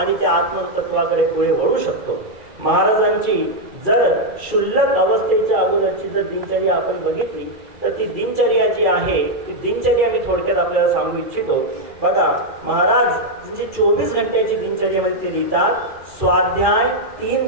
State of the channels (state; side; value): late; left; 2.3 ms